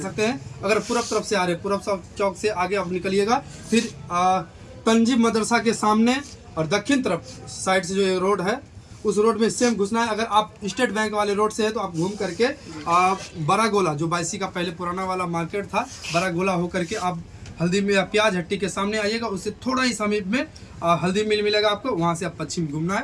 सकते हैं। अगर पूरब तरफ से आ रहे हैं, पूरब चौक से आगे आप निकलिएगा, फिर तंजीब मदरसा के सामने और दक्षिण तरफ साइड से जो ये रोड है उस रोड में सेम घुसना है। अगर आप स्टेट बैंक वाले रोड से है तो आप घूम करके बड़ा गोला जो बायसी का पहले पुराना वाला मार्केट था, बड़ा गोला होकर के आप हल्दी में प्याज हट्टी के सामने आइएगा, उससे थोड़ा ही समीप में हल्दी मिल मिलेगा आपको, वहाँ से आप पश्चिम घूमना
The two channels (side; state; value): both; identical; correlation 1.00